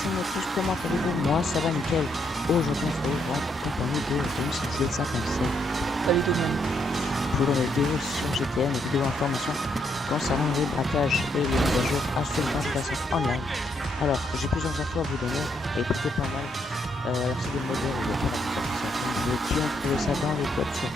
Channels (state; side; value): normal; both; correlation 0.75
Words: Notus, comment allez-vous? Moi ça va nickel. Aujourd'hui on se retrouve en compagnie de Z57. Salut tout le monde. Pour une vidéo sur GTN, une vidéo information concernant les braquages et les mises à jour à ce 24 online. Alors j'ai plusieurs infos à vous donner et plutôt pas mal. Alors c'est des modèles où il y a pas de qui ont trouvé ça dans les codes